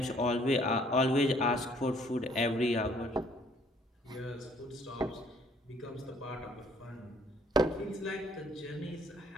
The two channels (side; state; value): both; normal; correlation 0.61